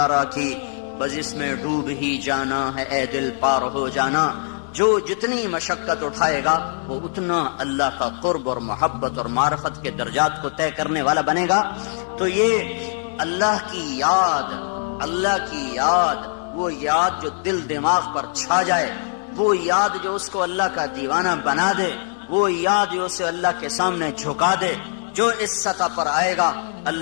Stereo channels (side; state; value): right; silent; digital silence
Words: کی، بس اس میں ڈوب ہی جانا ہے اے دل پار ہو جانا. جو جتنی مشقت اٹھائے گا وہ اتنا اللہ کا قرب اور محبت اور معرفت کے درجات کو طے کرنے والا بنے گا. تو یہ اللہ کی یاد، اللہ کی یاد، وہ یاد جو دل دماغ پر چھا جائے، وہ یاد جو اس کو اللہ کا دیوانہ بنا دے، وہ یاد جو اسے اللہ کے سامنے جھکا دے، جو اس سطح پر آئے گا